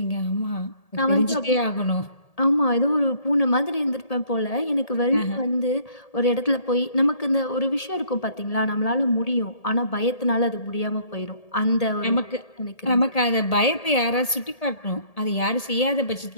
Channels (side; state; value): right; late; 1.8 ms